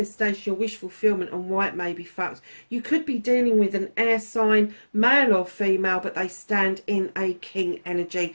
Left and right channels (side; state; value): both; inverted; correlation -1.00